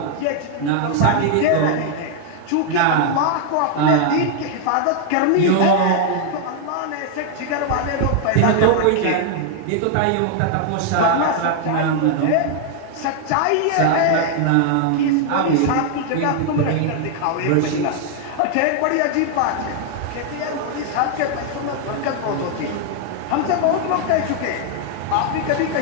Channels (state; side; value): different; both; correlation 0.00